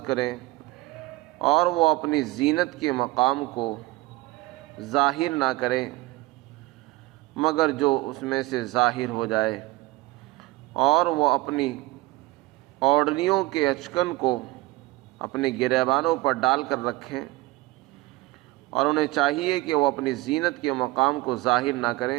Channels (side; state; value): left; quieter; 20.0 dB